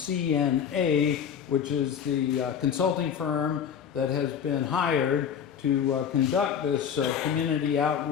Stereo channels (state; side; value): quieter; right; 8.0 dB